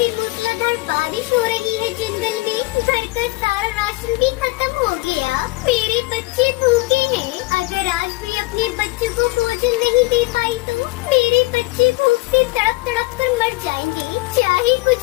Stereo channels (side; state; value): right; quieter; 22.4 dB